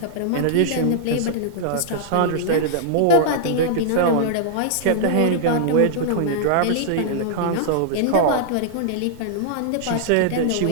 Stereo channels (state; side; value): different; both; correlation -0.01